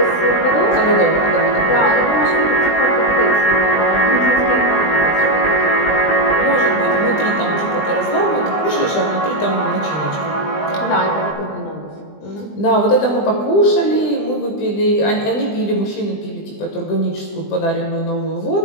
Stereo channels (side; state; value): right; late; 20 ms